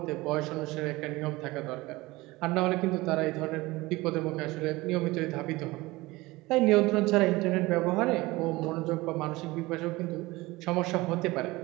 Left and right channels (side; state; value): left; quieter; 20.7 dB